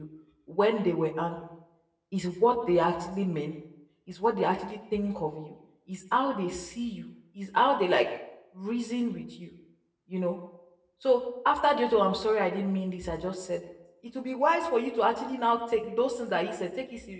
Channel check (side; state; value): both; identical; correlation 1.00